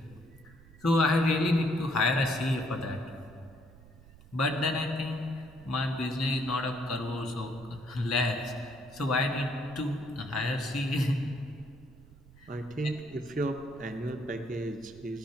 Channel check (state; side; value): noise; right; rumble, 22 dB below the sound